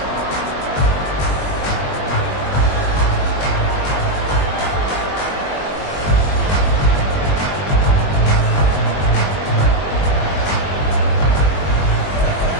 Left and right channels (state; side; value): late; right; 21 ms